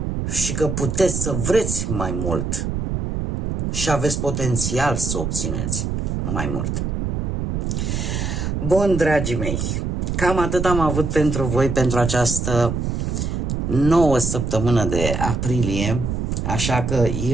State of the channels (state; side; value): noise; right; rumble, 2 dB below the sound